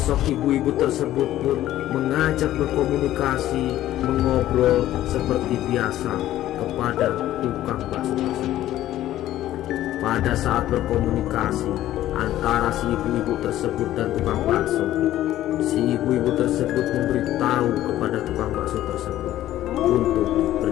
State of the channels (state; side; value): quieter; right; 13.6 dB